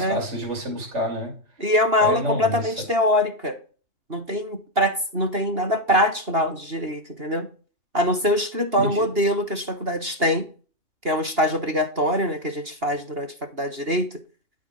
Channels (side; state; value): left; late; 2.8 ms